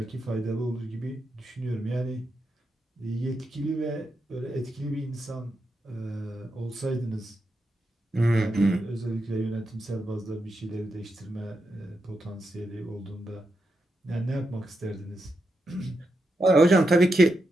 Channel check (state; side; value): normal; both; correlation 0.86